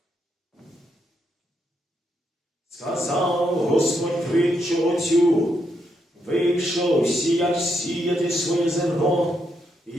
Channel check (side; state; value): both; normal; correlation 0.79